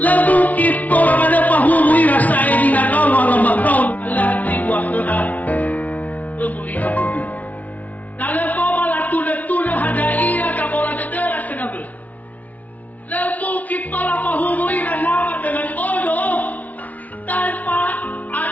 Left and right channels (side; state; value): right; late; 0.072 ms